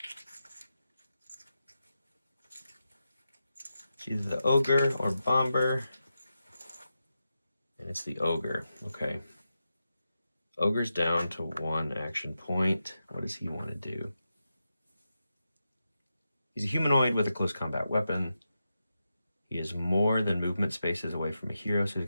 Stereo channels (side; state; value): both; inverted; correlation -0.89